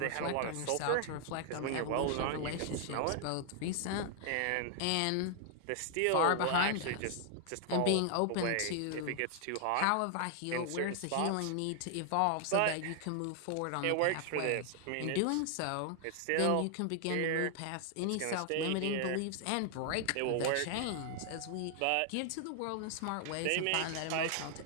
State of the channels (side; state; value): both; different; correlation 0.00